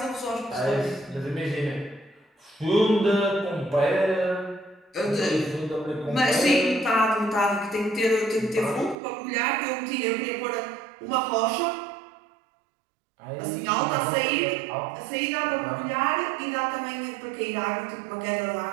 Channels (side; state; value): left; drops out; at 9.0 s